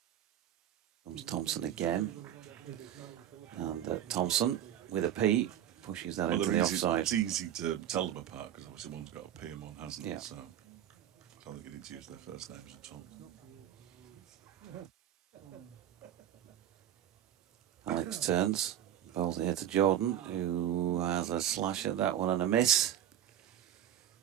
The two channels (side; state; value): left; quieter; 11.0 dB